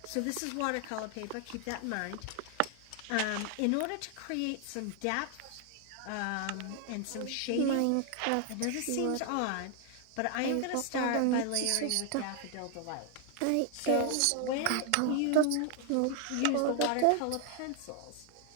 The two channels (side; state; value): both; different; correlation 0.00